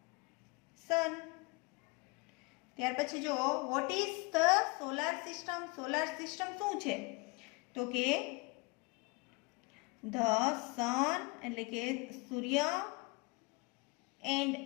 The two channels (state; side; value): quieter; right; 27.2 dB